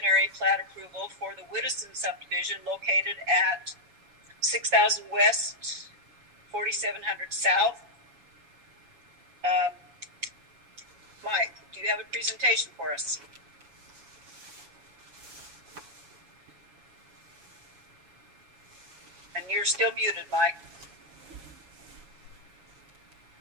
plat approval for the Widdowson subdivision located at 6,000 West, 4,700 South. Mike, do you have a presentation for us? And you're still muted, Mike.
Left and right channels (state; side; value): late; left; 7.1 ms